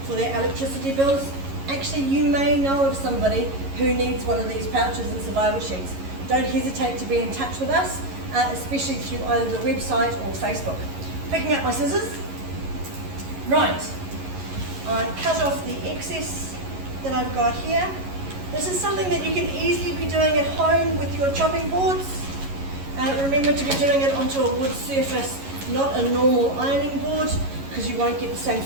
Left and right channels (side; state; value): left; late; 11 ms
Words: for their electricity bills. Actually, you may know of somebody who needs one of these pouches and survival sheets. Don't hesitate to be in touch with us. especially through either the website or Facebook. Picking up my scissors. Right, I cut off the excess that I've got here. This is something that you can easily be doing at home with your chopping boards. Remember to be doing it onto a wood surface, not a normal ironing board, because you won't get the same